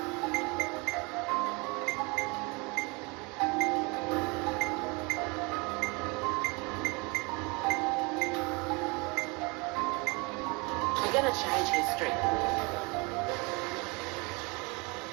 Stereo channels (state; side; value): quieter; left; 28.3 dB